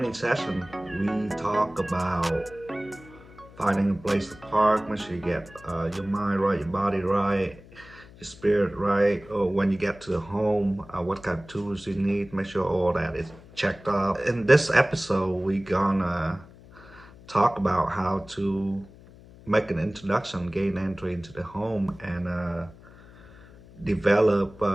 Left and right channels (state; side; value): noise; left; hum, 21 dB below the sound